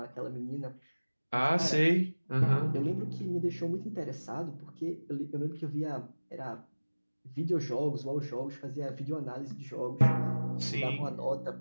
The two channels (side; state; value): both; inverted; correlation -1.00